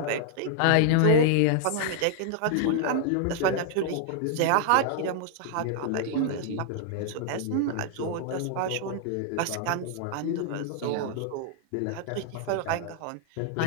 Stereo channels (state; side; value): different; both; correlation -0.01